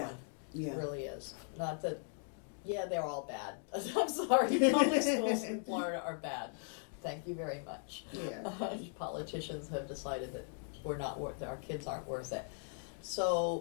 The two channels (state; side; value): silent; right; 52 dB below the other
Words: one. yeah. It really is. Not that, yeah, they're all bad. I'm sorry, public schools in Florida are bad. Thank you very much. Yeah. Politicians have decided that our kids aren't worth it.